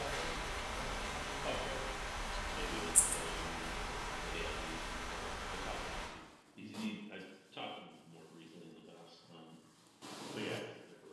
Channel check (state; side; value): identical; both; correlation 1.00